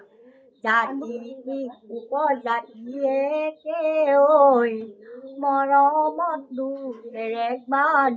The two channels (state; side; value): identical; both; correlation 1.00